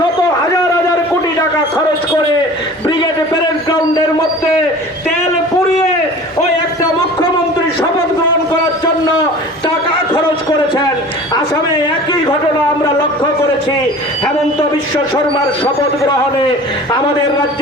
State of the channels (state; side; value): normal; both; correlation 0.41